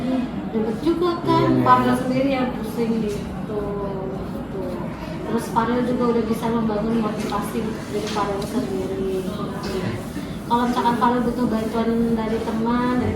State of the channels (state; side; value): identical; both; correlation 1.00